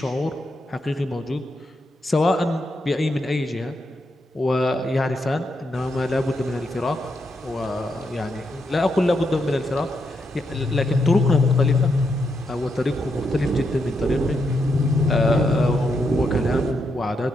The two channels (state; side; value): normal; both; correlation 0.81